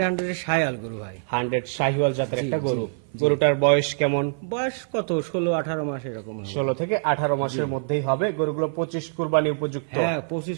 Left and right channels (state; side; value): silent; left; 56 dB below the other